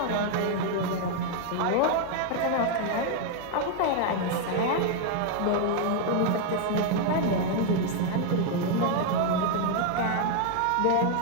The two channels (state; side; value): different; both; correlation 0.00